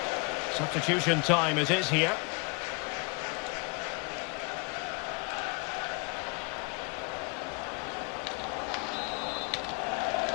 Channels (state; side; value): quieter; right; 30.1 dB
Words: Substitution time it is here.